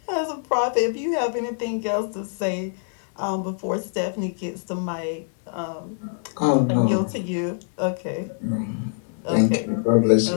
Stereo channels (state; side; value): silent; right; digital silence